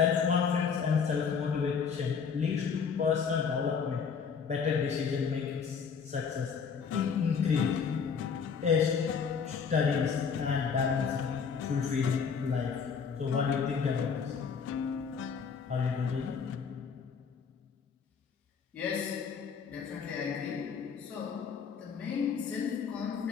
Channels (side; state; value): right; quieter; 6.2 dB